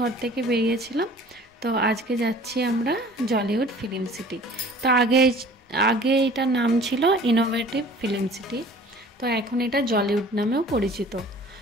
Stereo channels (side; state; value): both; normal; correlation 0.48